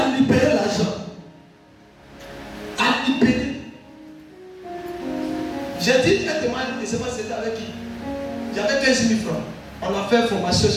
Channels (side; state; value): both; identical; correlation 1.00